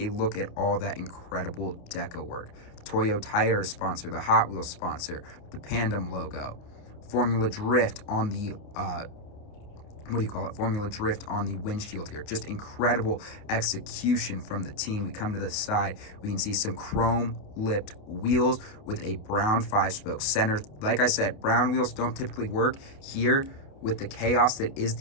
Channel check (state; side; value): late; right; 28 ms